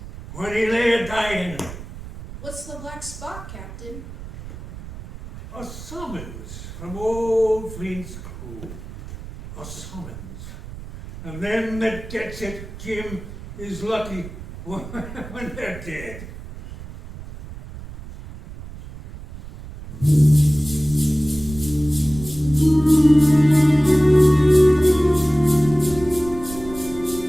when he lay a-dying. What's the black spot, Captain? A summons from old Flint's crew. A summons. And them that gets it, Jim, is lucky when they're dead.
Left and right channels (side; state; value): right; noise; rumble, 13 dB below the sound